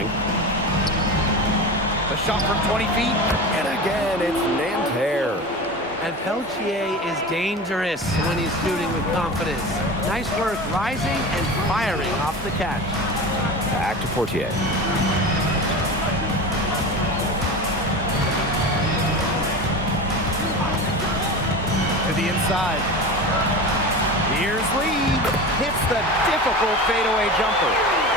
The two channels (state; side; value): normal; both; correlation 0.29